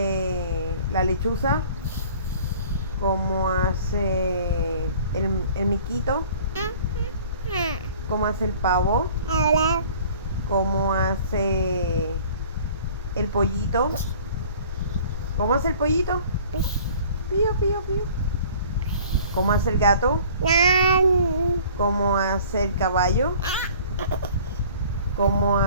la lechuza? ¿Cómo hace el miquito? ¿Cómo hace el pavo? ¿Cómo hace el pollito? ¿Cómo hace el pollito? Pío, pío, pío. ¿Cómo hace el gato? ¿Cómo hace el caballo? ¿Cómo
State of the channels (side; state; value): both; inverted; correlation -0.49